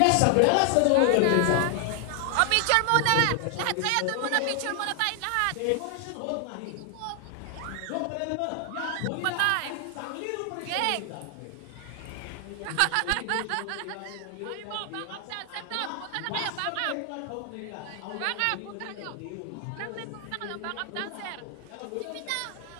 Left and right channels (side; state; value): both; different; correlation 0.00